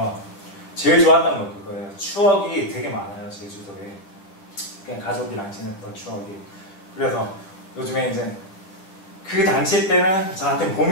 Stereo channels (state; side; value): late; right; 10 ms